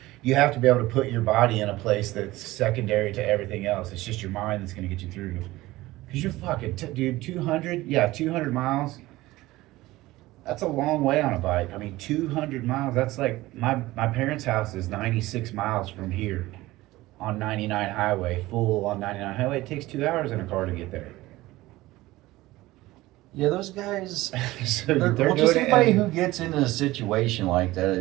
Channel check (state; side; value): quieter; left; 18.2 dB